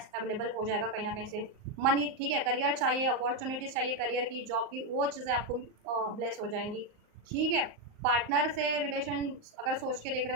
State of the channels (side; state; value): left; late; 38 ms